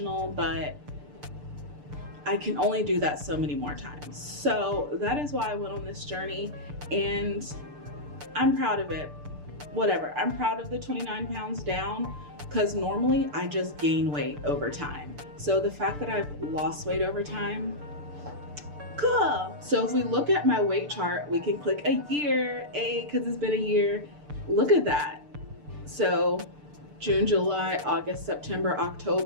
but I can only do that so many more times. So that is why I went on this journey, and I'm proud of it. Whatever, I'm proud of the 29 pounds down, because normally I just gain weight over time. So the fact that I've lost weight over time, cool. So if we look at my weight chart, we can click a year, because it's been a year. Look at that. So June, July, August, September,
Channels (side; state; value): left; late; 6.8 ms